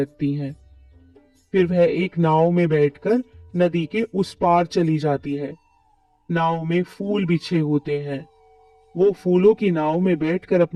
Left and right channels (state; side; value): identical; both; correlation 1.00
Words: हैं। फिर वह एक नाव में बैठकर नदी के उस पार चली जाती है। नाव में फूल बिछे होते हैं। वो फूलों की नाव में बैठकर